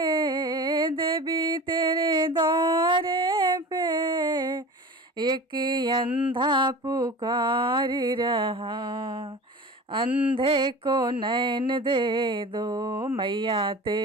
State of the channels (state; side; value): normal; both; correlation 0.35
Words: देवी तेरे द्वारे पे, एक अंधा पुकार रहा। अंधे को नैन दे दो मैया